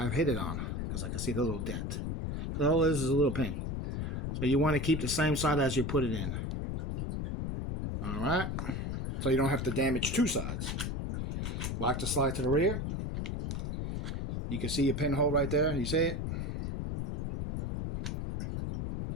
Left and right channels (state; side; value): noise; left; rumble, 2 dB below the sound